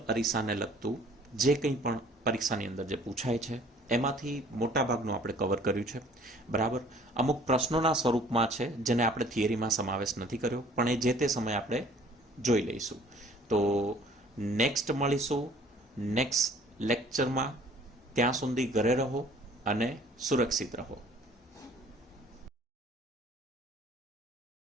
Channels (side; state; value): both; normal; correlation 0.54